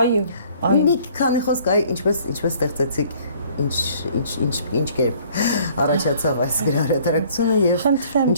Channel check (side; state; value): both; inverted; correlation -0.57